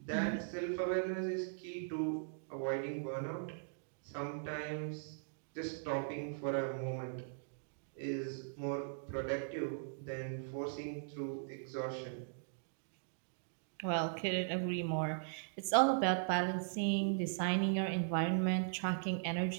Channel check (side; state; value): left; silent; digital silence